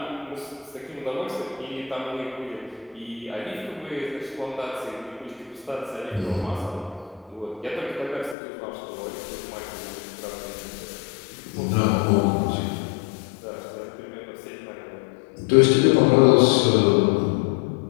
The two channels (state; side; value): drops out; right; at 8.3 s